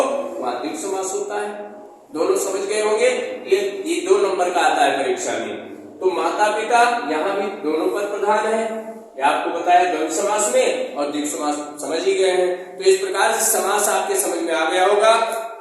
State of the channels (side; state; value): both; identical; correlation 1.00